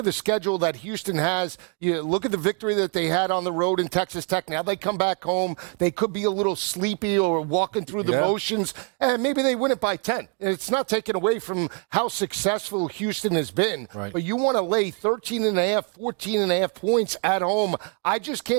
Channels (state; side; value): quieter; left; 37.8 dB